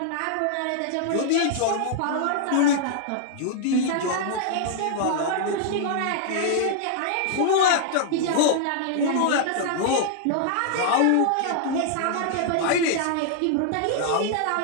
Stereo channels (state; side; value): different; both; correlation -0.01